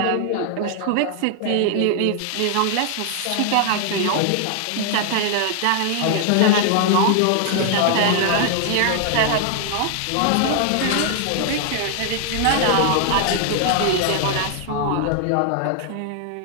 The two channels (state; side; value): different; both; correlation 0.00